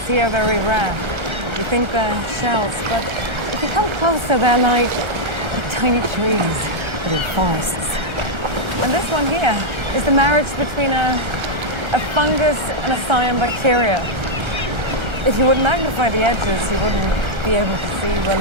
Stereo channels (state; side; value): late; left; 1.3 ms